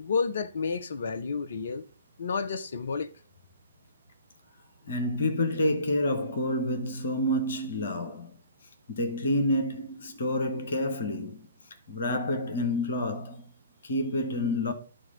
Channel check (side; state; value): both; inverted; correlation -0.50